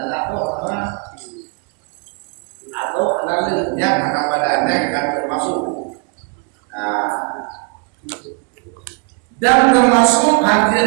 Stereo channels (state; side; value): quieter; left; 35.5 dB